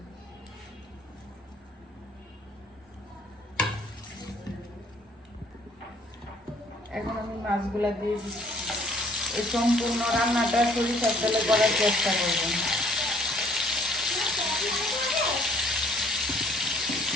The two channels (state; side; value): normal; both; correlation 0.59